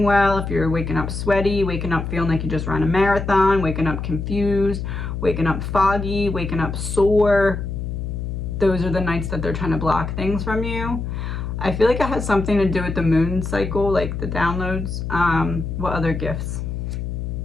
well, if you're waking up sweaty, waking up feeling like you just ran a marathon, waking up confused, waking up foggy, waking up sore, those are the nights that they're trying to block things from you. I feel like it has something to do with the moon cycle, like the downloads. What other gifts?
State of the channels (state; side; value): noise; left; hum, 4 dB below the sound